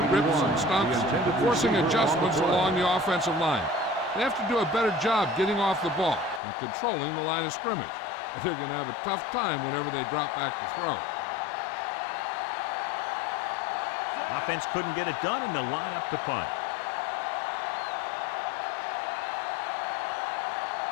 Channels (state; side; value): drops out; right; at 6.4 s